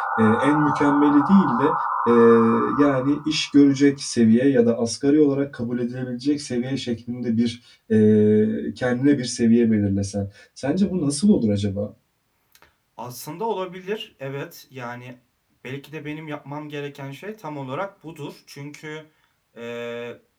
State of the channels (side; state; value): both; identical; correlation 1.00